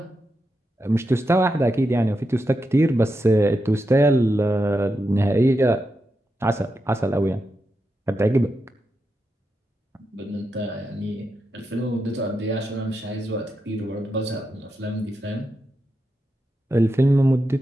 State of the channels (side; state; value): both; normal; correlation 0.86